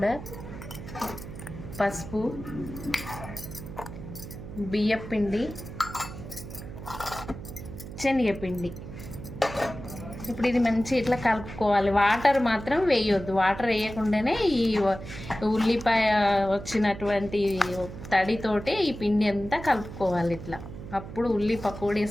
పసుపు, బియ్యపిండి, శనగపిండి. ఇప్పుడు ఇది మంచి ఇట్లా కలుపుకోవాలి. వాటర్ మాత్రం వేయొద్దు. వాటర్ వేయకుండానే ఈ ఉల్లిపాయ వచ్చినటువంటి తడితోటి ఈ పిండి అంతా కలుపుకోవాలి ఇట్లా. అప్పుడు ఉల్లి పకోడీ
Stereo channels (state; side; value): noise; right; hum, 11 dB below the sound